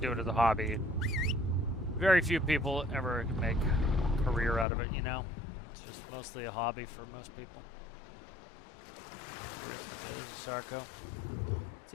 it as a hobby. Very few people ever make a career out of it, you know. It's just mostly a hobby for most people. There's Sarko.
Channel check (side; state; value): right; drops out; at 4.7 s